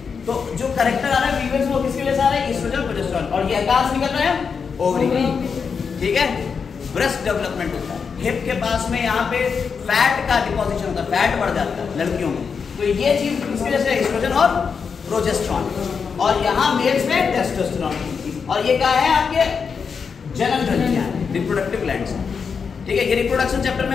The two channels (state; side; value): quieter; right; 5.9 dB